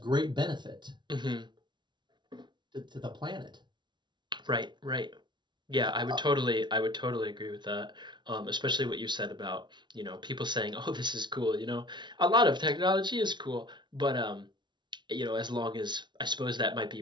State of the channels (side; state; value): left; late; 0.22 ms